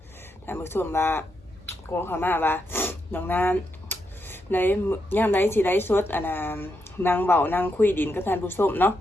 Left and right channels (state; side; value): normal; both; correlation 0.82